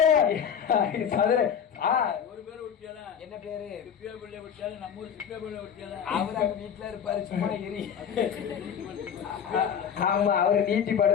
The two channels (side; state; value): right; quieter; 8.0 dB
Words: ஒரு பேர் விட்டியால என்ன பேரு சிப்பியா பிள்ளை விட்டியால நம்ம ஊர் சிப்பியா பிள்ளை விட்டியால அவர் அங்க வீட்டுல இருப்பாரு சும்மா எரி ஆமா அவரு நீட்டி